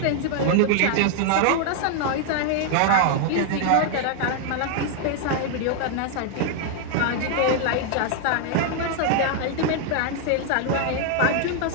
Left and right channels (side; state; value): both; different; correlation 0.00